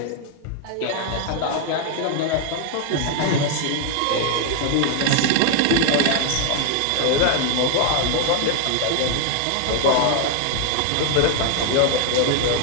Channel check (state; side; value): different; both; correlation 0.00